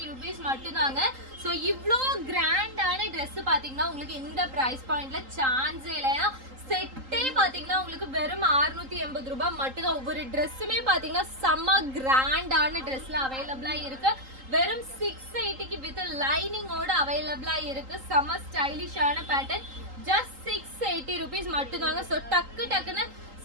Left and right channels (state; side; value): late; left; 3.8 ms